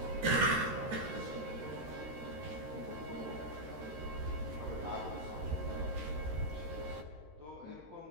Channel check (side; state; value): left; late; 13 ms